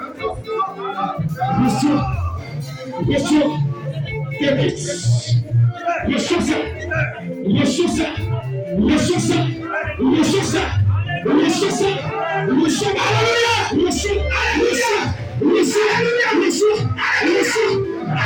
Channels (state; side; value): identical; both; correlation 1.00